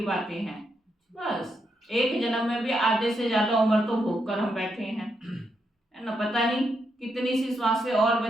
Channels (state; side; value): normal; both; correlation 0.81